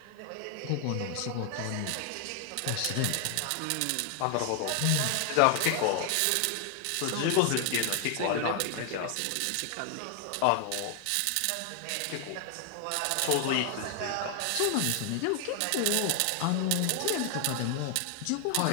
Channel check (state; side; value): different; both; correlation 0.00